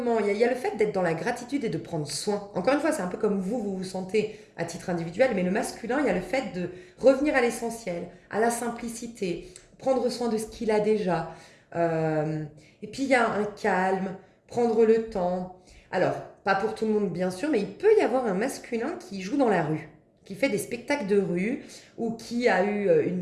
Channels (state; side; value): identical; both; correlation 1.00